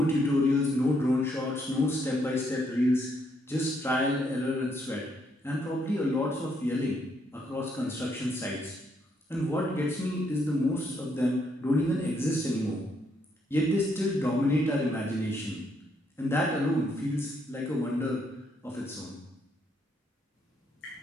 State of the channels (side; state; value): both; normal; correlation 0.74